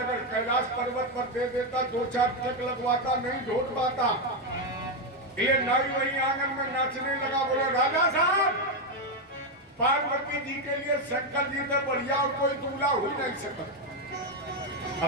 कैलाश पर्वत पर दे देता, 2-4 ट्रक लगवाता, नहीं ढोट पाता। ये नाई वही आंगन में नाचने लगा, बोला राजा साहब पार्वती जी के लिए शंकर जी से बढ़िया और कोई दूल्हा हो ही नहीं सकता।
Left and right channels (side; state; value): both; normal; correlation 0.05